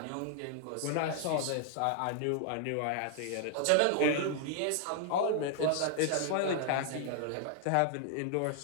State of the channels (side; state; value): both; different; correlation 0.00